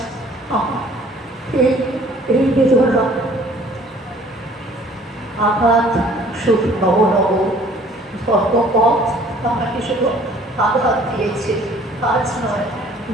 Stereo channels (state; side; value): normal; both; correlation 0.55